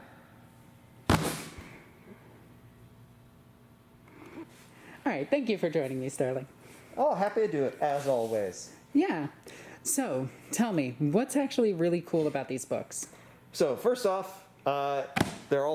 All right, thank you for joining me, Sterling. Oh, happy to do it, as always. Yeah. So, tell me, what's actually really cool about these books? So, first off, they're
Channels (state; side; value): identical; both; correlation 1.00